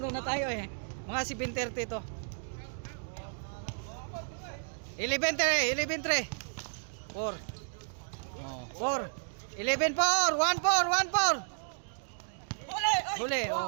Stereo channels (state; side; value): silent; left; digital silence